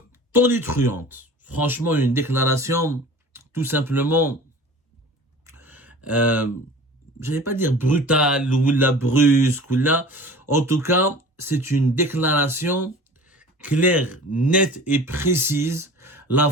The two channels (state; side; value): normal; both; correlation 0.41